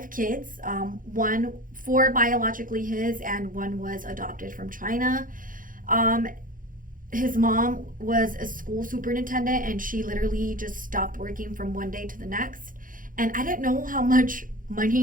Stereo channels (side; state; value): left; late; 0.40 ms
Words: kids, 4 biologically his, and 1 was adopted from China. His mom was a school superintendent, and she literally just stopped working from one day to the next. And I didn't know how much